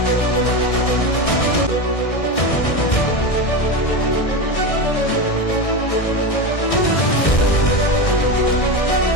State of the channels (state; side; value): late; right; 1.6 ms